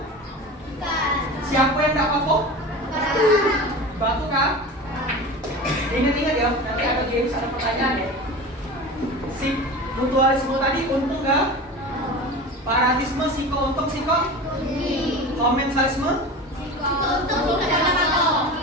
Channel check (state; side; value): normal; both; correlation 0.32